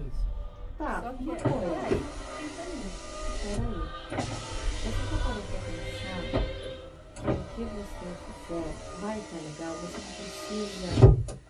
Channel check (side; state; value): both; identical; correlation 1.00